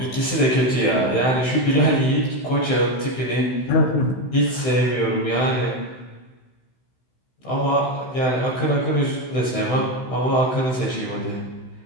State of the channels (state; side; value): late; right; 16 ms